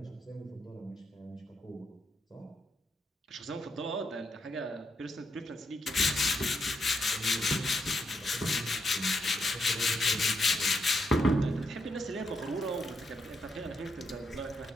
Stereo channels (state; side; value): normal; both; correlation 0.79